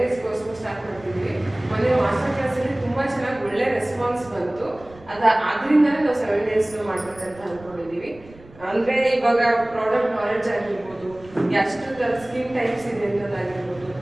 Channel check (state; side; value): noise; right; rumble, 22 dB below the sound